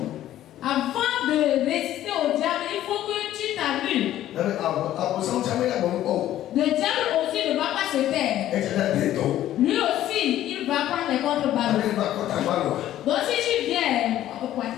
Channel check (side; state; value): right; quieter; 12.9 dB